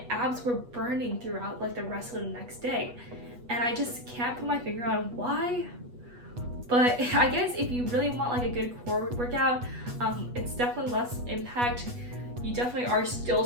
abs were burning throughout like the rest of the next day, and I just can't put my finger on why. But I guess if you really want like a good core workout, it's definitely less impact. You definitely are still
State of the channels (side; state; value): left; late; 8.2 ms